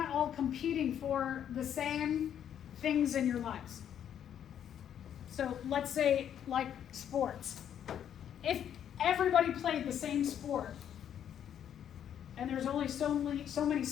all competing for the same things in your lives. So let's say like sports. If everybody played the same sport and there's only so many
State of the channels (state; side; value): quieter; right; 9.5 dB